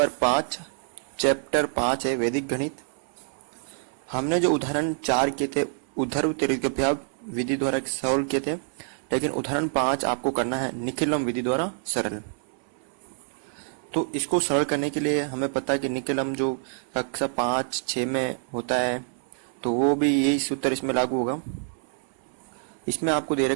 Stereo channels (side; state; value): left; silent; 60 dB below the other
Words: 5, chapter 5 है वैदिक गणित। हमने जो उदाहरण 4 किए थे उद्धर त्रिज्याभ्याम विधि द्वारा सॉल्व किए थे, लेकिन उदाहरण 5 आपको करना है निखिलम विधि द्वारा सरल। तो इसको सरल करने के लिए हमें पता है कि निखिलम जो कक्षा 5-6 में होता है, तो वो भी यही सूत्र इसमें लागू होगा। इसमें आपको दे